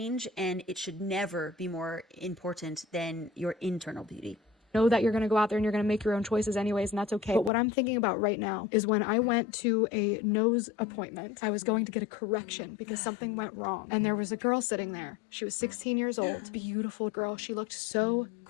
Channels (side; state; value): right; drops out; at 7.5 s